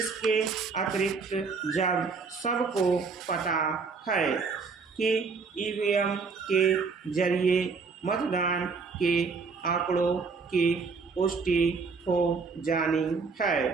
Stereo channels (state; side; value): quieter; left; 4.8 dB